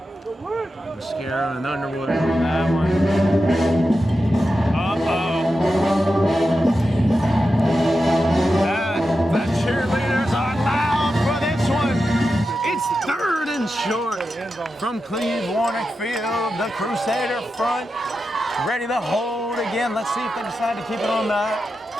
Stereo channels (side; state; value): both; normal; correlation 0.90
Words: Mascara and Underwood on that one. Uh-oh. The cheerleaders are loud for this one. It's 3rd and short from Cleve Warnick Field. The Crusader front ready to hold again. Let's see if they decide to keep it on